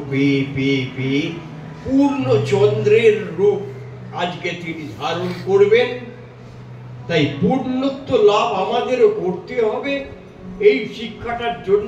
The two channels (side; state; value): both; identical; correlation 1.00